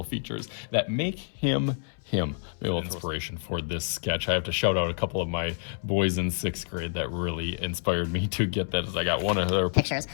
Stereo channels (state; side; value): silent; right; 59 dB below the other